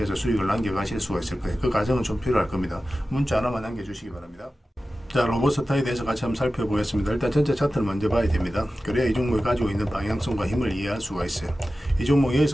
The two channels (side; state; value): both; normal; correlation 0.94